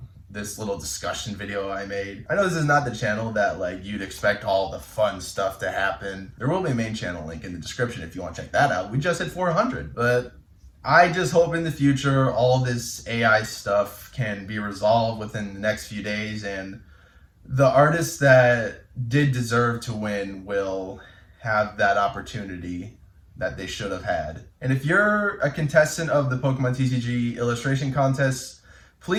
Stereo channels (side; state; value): both; identical; correlation 1.00